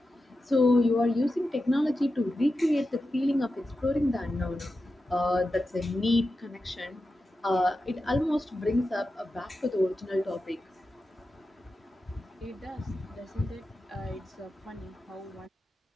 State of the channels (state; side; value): normal; both; correlation 0.91